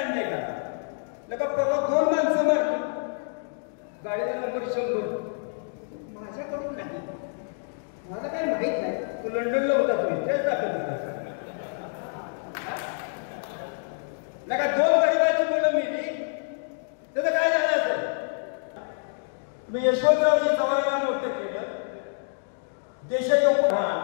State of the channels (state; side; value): silent; right; digital silence